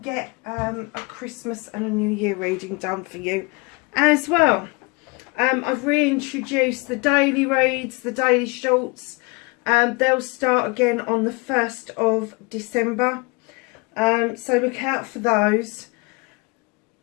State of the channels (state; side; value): quieter; right; 28.1 dB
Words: get a Christmas and a New Year reading done for you as well. I've reintroduced the daily reads, the daily shorts. They'll start again on the 1st of December. So look out for those.